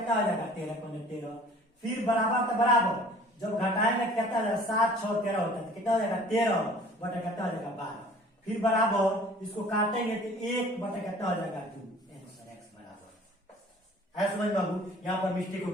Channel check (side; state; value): both; normal; correlation 0.49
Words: हो जाएगा 13, फिर बराबर तो बराबर जब घटाएंगे कितना हो जाएगा 7 × 6 = 13 होता है, तो कितना हो जाएगा 13 बटे कितना हो जाएगा 12। फिर बराबर इसको काटेंगे तो 1 बटे कितना हो जाएगा 2। है समझ बाबू, यहाँ पर मिस्टेक हो